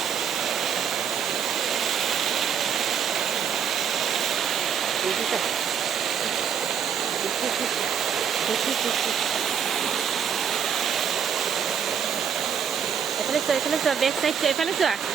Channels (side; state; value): left; quieter; 7.7 dB